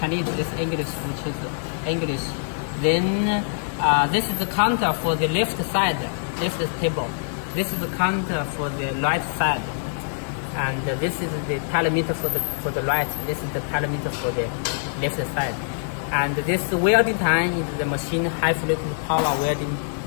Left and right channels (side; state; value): right; silent; digital silence